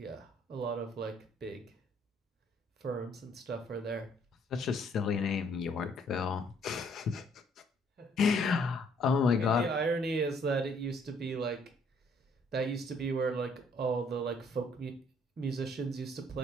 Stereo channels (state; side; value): normal; both; correlation 0.64